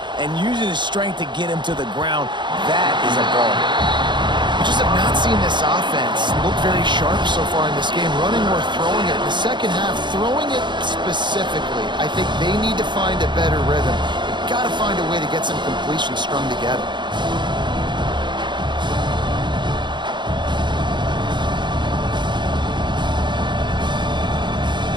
and using his strength to get him to the ground. That is a ball. We just have not seen this offense look very sharp so far in this game, running or throwing it. In the second half, throwing it specifically, I think they need to find a better rhythm. They've got to find a way to get some completions strung together.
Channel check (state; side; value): late; left; 0.22 ms